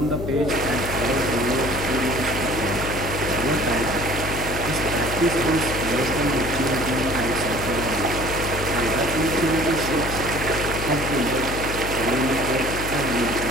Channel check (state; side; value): noise; left; hum, 6 dB below the sound